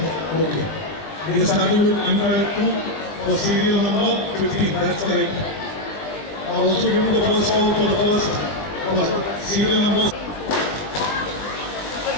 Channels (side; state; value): right; late; 20 ms